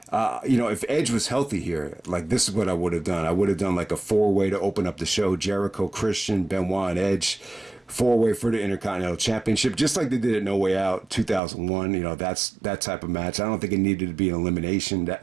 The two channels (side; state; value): left; drops out; at 11.4 s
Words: if Edge was healthy here, like this is what I would have done. I would have done like a 4-way to open up the show: Jericho, Christian, Benoit, and Edge. 4-way for the Intercontinental Championship, just like they did at No Way Out 2001. That's that type of match. I don't think it needed to be an elimination.